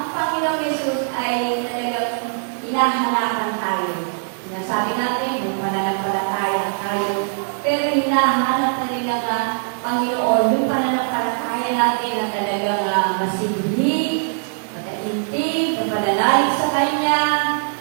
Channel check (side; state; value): left; silent; 62 dB below the other